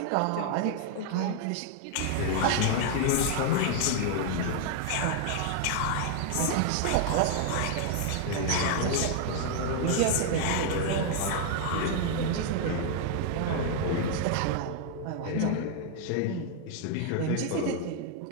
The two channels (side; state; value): both; different; correlation 0.00